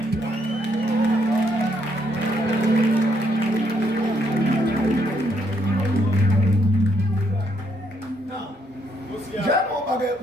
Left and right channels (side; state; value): both; normal; correlation 0.73